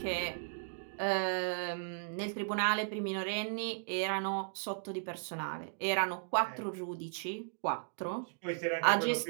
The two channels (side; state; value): left; silent; digital silence